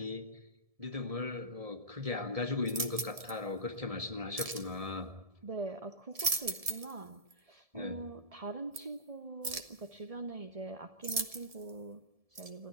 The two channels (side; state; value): left; late; 1.7 ms